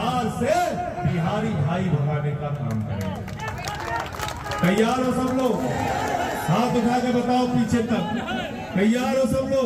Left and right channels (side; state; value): both; identical; correlation 1.00